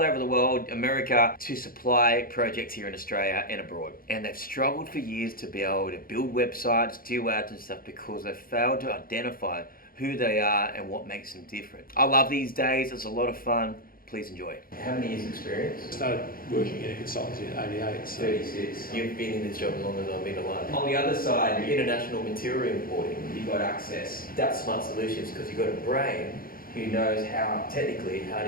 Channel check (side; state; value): right; late; 0.42 ms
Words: over the world, America, to supply projects here in Australia and abroad. And they've struggled for years to be able to build websites, do ads and stuff because they've failed to identify who they are and what makes them different. I love these days, it's a lot of fun. Please enjoy. How many years experience? I started working in a consultancy in '88. So 36. You've been in this job as long as I've been alive. On the other side, international material importing, you've got access. That's smart solutions because you've got a brain who knows how